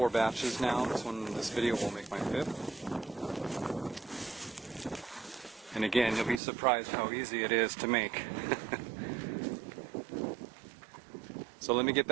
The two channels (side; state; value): left; drops out; at 6.4 s